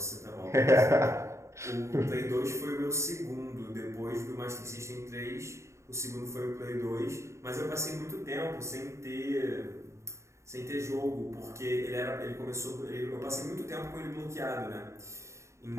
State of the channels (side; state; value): left; late; 0.14 ms